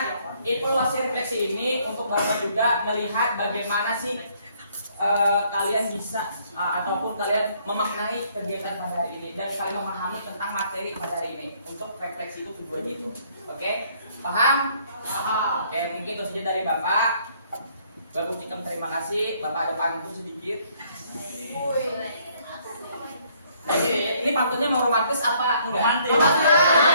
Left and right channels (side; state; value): both; inverted; correlation -0.65